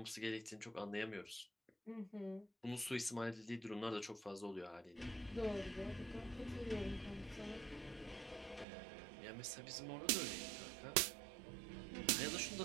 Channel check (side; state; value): left; drops out; at 8.7 s